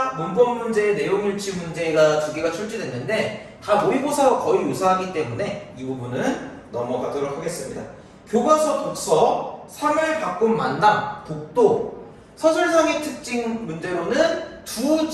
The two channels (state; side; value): identical; both; correlation 1.00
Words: 문법 문제, 내용 일치 문제가 2개가 출제됐는데 다 모의고사와 거의 유사하기 때문에 이 부분은 넘어가도록 하겠습니다. 교과서 독서, 3을 바꾼 만남, 독도, 서술상의 특징 문제로는 두